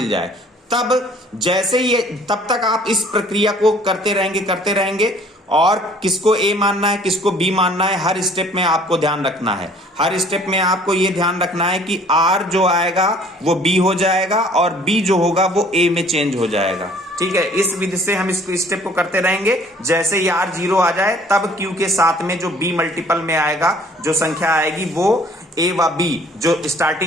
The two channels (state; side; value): normal; both; correlation 0.55